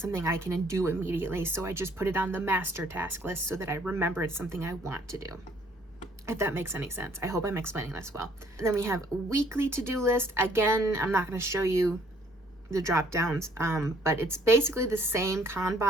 I can do immediately. So I just put it on the master task list so that I remember it's something I want to do. If that makes any sense. I hope I'm explaining this well. And then we have weekly to-do list. Again, I'm not going to show you the drop downs, but it's basically the same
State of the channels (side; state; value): both; normal; correlation 0.62